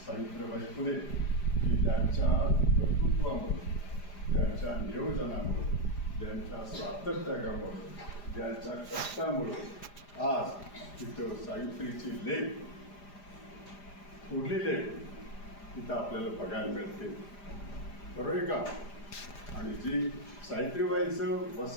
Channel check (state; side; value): late; right; 4.9 ms